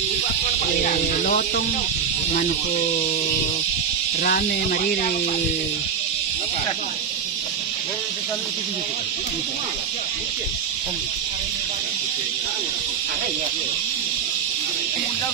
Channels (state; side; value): quieter; left; 6.9 dB